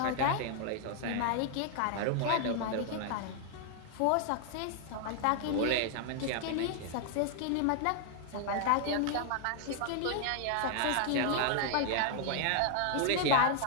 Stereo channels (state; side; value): different; both; correlation 0.00